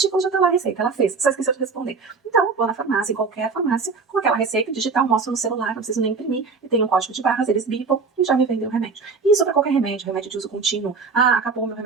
já tá lá a receita. Ela fez, só esqueceu de responder. Então, vou na farmácia, em qualquer farmácia, com aquela receita digital, mostro no celular, não preciso nem imprimir, e tem um código de barras, eles bipam e já me vendem o remédio. Isso para qualquer remédio de uso contínuo. Acabou meu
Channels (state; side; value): quieter; left; 4.7 dB